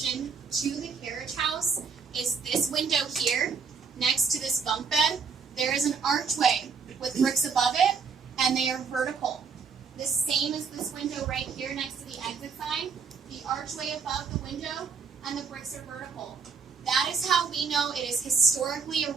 to the carriage house is this window here, next to this bunk bed. There is an archway with bricks above it, and they are vertical. The same as this window right here next to the exit sign. The archway above the window, and the bricks are vertical. That is how we know it is historically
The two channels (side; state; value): left; quieter; 5.6 dB